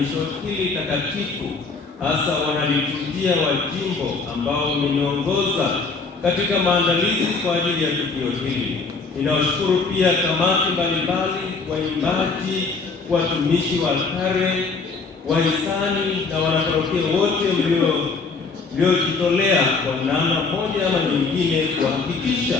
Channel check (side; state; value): right; quieter; 4.3 dB